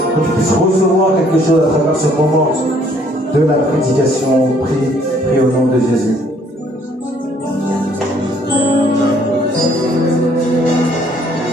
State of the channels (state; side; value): normal; both; correlation 0.63